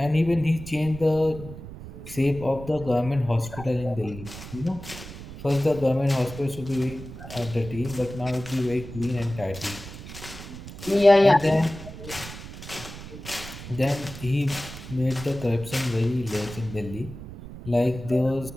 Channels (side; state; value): right; noise; rumble, 13 dB below the sound